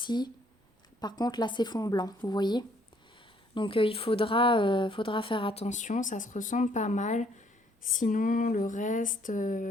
Par contre, là, c'est fond blanc, vous voyez. Donc, il faudra faire attention. Ça se ressemble pas mal. Sinon, le reste...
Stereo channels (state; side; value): normal; both; correlation 0.65